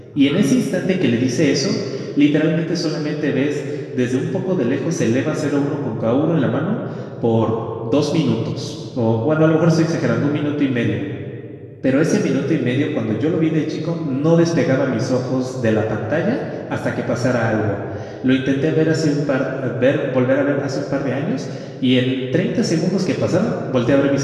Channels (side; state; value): both; identical; correlation 1.00